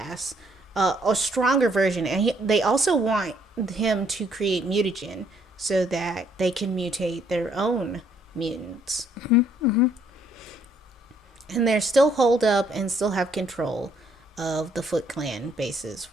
a stronger version. And they also want him to create mutagen so that they can mutate their own mutants. And they're still holed up and still have control of the Foot Clan bases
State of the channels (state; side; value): normal; both; correlation 0.67